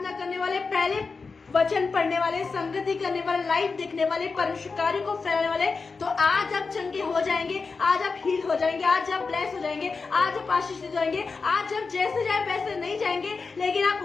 करने वाले, पहले वचन पढ़ने वाले, संगति करने वाले, लाइव देखने वाले, परमेश्वर कार्य को फैलाने वाले, तो आज आप चंगे हो जाएंगे, आज आप हील हो जाएंगे, आज आप ब्लेस हो जाएंगे, आज आप आशीष हो जाएंगे। आज आप जैसे जाए वैसे नहीं जाएंगे, लेकिन आप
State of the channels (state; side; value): quieter; right; 4.5 dB